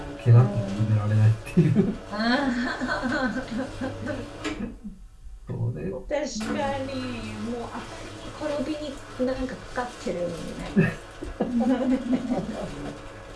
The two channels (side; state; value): both; identical; correlation 1.00